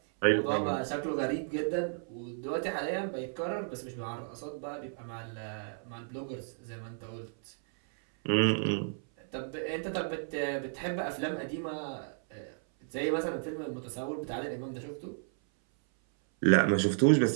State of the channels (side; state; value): left; silent; 56 dB below the other